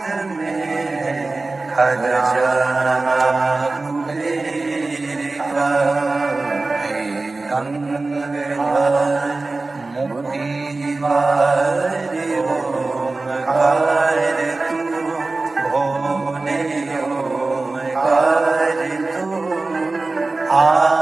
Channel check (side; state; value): left; quieter; 3.4 dB